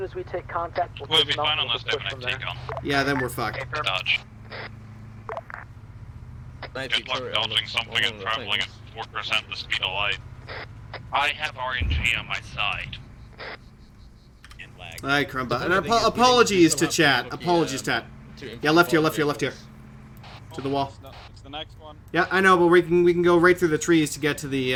as we take contact, We'll be dismount fine and unless they push have from an there. take on. Yeah, then we're fucked. Dodge. Good luck dodging something and traveling at 4% the speed of light. I have RNG on my side. Alright, Crumba. And apologies to chat. Apologies, chat. Yeah, left here. To the wall. It's the next one. Yeah, I know, but we can go right through the trees to get to the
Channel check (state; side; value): identical; both; correlation 1.00